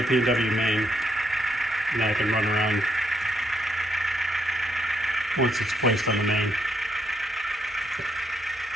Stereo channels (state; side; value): normal; both; correlation 0.75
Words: P&W main. And then I can run around once it's placed on the main.